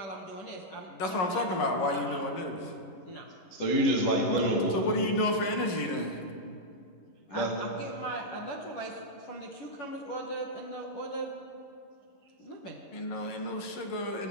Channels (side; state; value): right; late; 11 ms